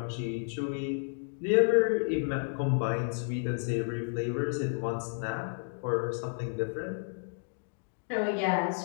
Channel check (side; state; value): right; silent; digital silence